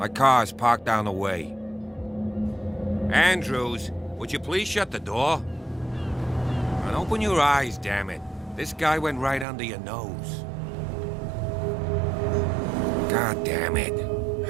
car's parked down the way. Andrews, would you please shut the door? And open your eyes, damn it. This guy went right under your nose. God damn it.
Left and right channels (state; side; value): drops out; left; at 9.5 s